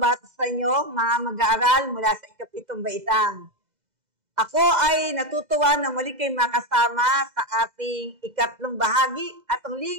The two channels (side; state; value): left; late; 2.0 ms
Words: sa inyo, mga mag-aaral mula sa ikapitong baitang. Ako ay natutuwa na muli kayo makasama sa ating ikatlong bahagi at